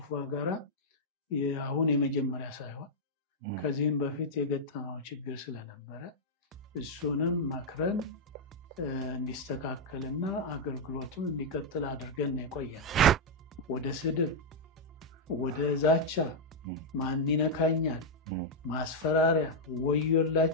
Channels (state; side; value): normal; both; correlation -0.03